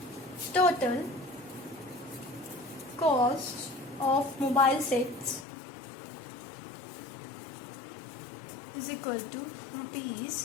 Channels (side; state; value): right; drops out; at 5.5 s